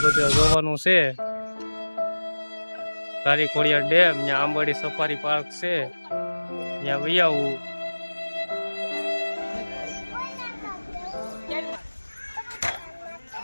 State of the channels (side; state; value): both; inverted; correlation -1.00